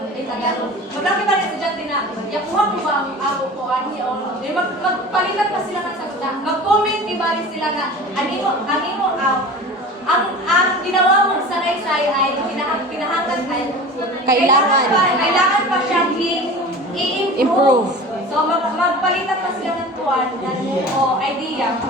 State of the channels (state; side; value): normal; both; correlation 0.37